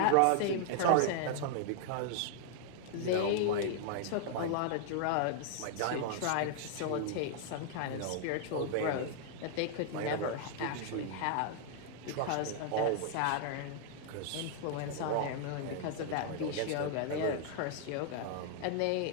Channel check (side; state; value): both; different; correlation -0.01